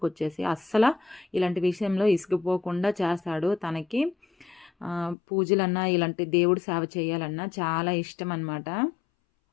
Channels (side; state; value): right; drops out; at 5.2 s